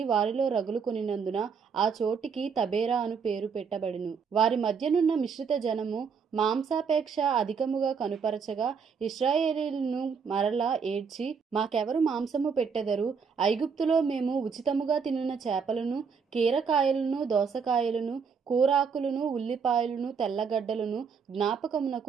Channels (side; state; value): left; quieter; 5.9 dB